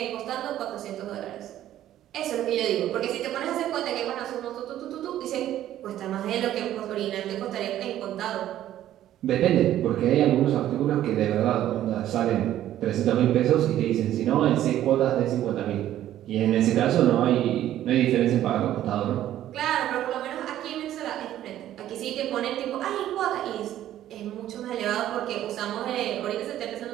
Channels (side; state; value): left; quieter; 12.5 dB